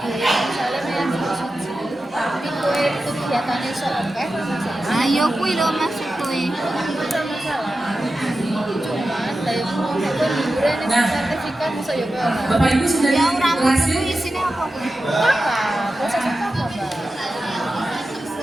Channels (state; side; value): normal; both; correlation 0.92